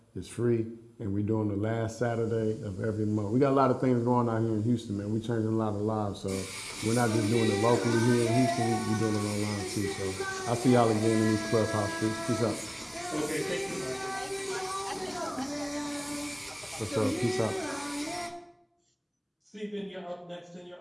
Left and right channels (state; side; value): identical; both; correlation 1.00